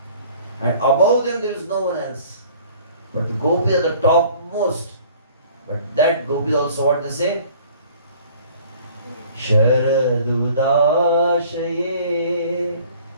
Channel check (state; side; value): inverted; both; correlation -0.52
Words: And above them there is no one else. But the gopis are the topmost. But that gopis also what they say? Sharadudashaye